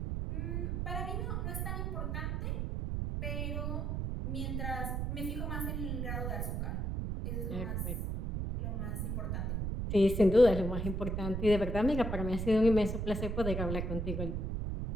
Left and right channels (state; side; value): noise; right; rumble, 1 dB below the sound